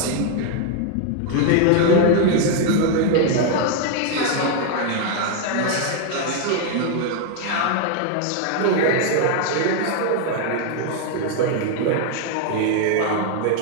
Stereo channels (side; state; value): both; different; correlation 0.00